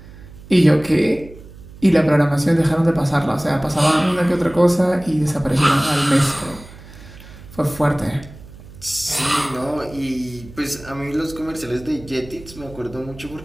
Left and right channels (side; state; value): right; noise; hum, 18 dB below the sound